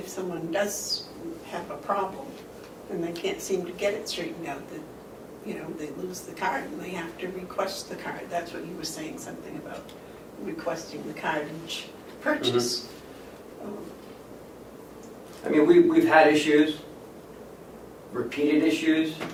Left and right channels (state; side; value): identical; both; correlation 1.00